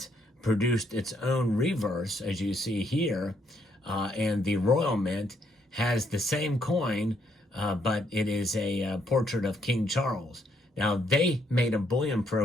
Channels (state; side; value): normal; both; correlation 0.72